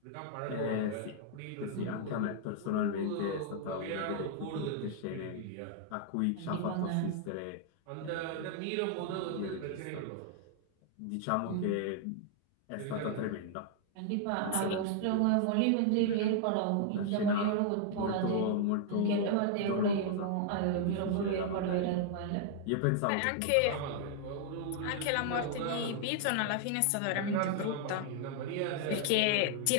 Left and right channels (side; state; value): both; different; correlation -0.01